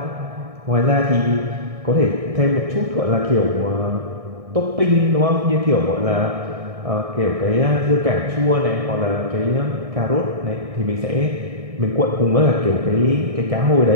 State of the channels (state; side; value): late; left; 1.6 ms